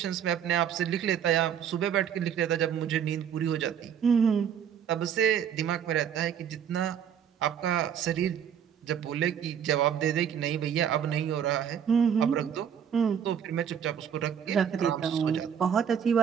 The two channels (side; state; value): left; quieter; 8.3 dB